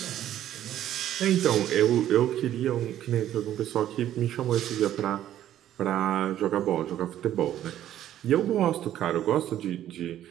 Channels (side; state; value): left; quieter; 11.9 dB